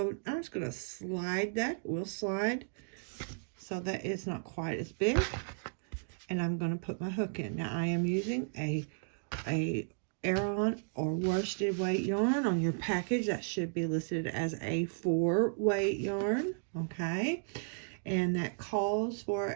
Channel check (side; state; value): left; silent; digital silence